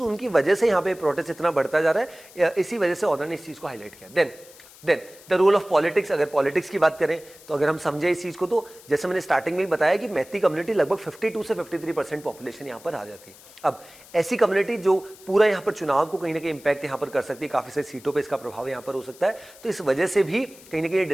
उनकी वजह से यहाँ पे प्रोटेस्ट इतना बढ़ता जा रहा है, इसी वजह से ऑर्डर ने इस चीज को हाईलाइट किया। Then the role of politics. अगर पॉलिटिक्स की बात करें तो अगर हम समझे इस चीज को, तो जैसे मैंने स्टार्टिंग में ही बताया कि मैती कम्युनिटी लगभग 52 से 53% पॉपुलेशन यहाँ पर आ जाती है। अब ऐसी कम्युनिटी जो पूरा यहाँ पर चुनाव को कहीं ना कहीं इंपैक्ट यहाँ पर कर सकती है, काफी सारी सीटों पर इसका प्रभाव यहाँ पर हो सकता है, तो इस वजह से भी कहीं ना कहीं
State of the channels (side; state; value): left; noise; hiss, 22 dB below the sound